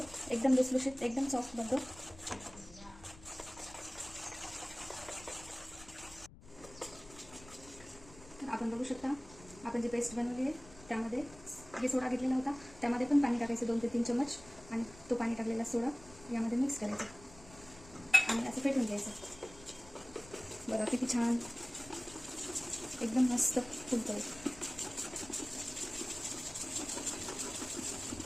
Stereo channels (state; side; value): noise; left; rumble, 20 dB below the sound